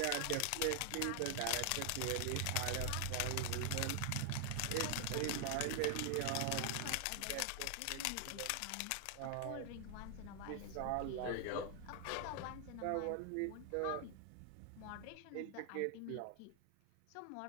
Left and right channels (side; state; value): both; different; correlation 0.00